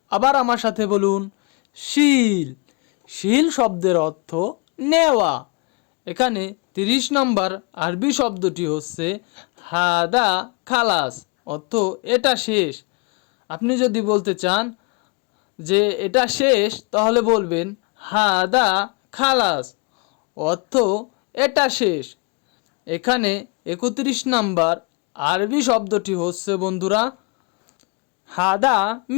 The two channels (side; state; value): right; quieter; 31.8 dB